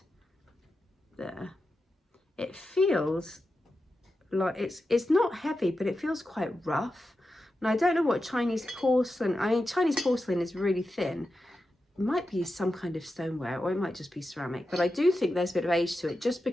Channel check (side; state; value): both; normal; correlation 0.90